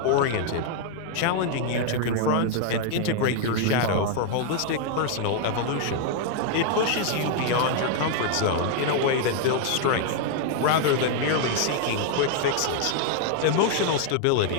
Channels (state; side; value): different; both; correlation 0.00